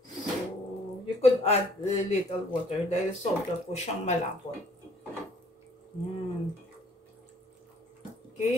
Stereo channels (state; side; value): normal; both; correlation 0.58